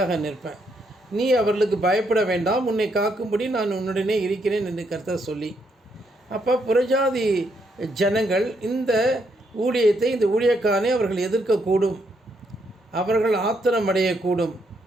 நிற்பேன். நீ அவர்களுக்கு பயப்பட வேண்டாம், உன்னை காக்கும்படி நான் உன்னுடனே இருக்கிறேன் என்று கர்த்தர் சொல்லி, அப்போ புறஜாதி ஜனங்கள் இந்த ஊழியத்தை, இந்த ஊழியக்காரனை அவர்கள் எதிர்க்கக்கூடும், அவர்கள் ஆத்திரம் அடையக்கூடும்,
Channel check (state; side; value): normal; both; correlation 0.76